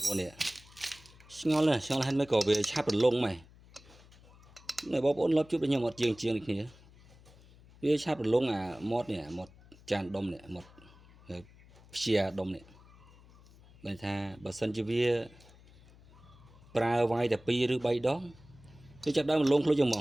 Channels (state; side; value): noise; left; hum, 24 dB below the sound